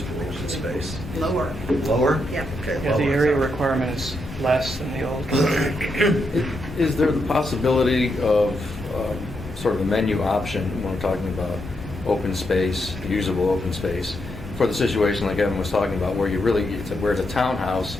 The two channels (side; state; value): both; normal; correlation 0.81